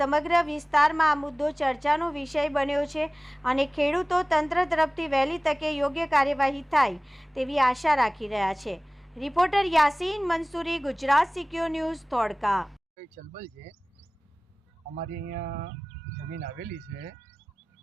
વિસ્તારમાં આ મુદ્દો ચર્ચાનો વિષય બન્યો છે અને ખેડૂતો તંત્ર તરફથી વહેલી તકે યોગ્ય કાર્યવાહી થાય તેવી આશા રાખી રહ્યા છે। Reporter Yasin Mansuri, Gujarat secure news, Dholka. ચલબલ છે, અમારી અહીંયા જમીન આવેલી છે,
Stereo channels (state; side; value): normal; both; correlation 0.98